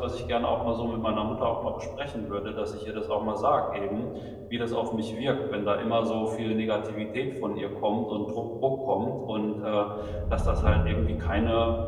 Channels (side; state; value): both; identical; correlation 1.00